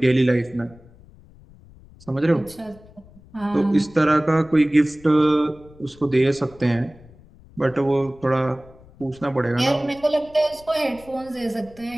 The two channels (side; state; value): left; noise; rumble, 24 dB below the sound